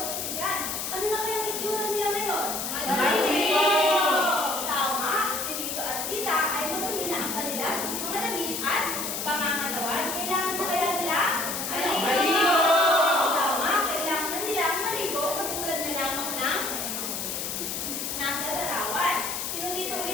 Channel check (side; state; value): left; noise; hiss, 3 dB below the sound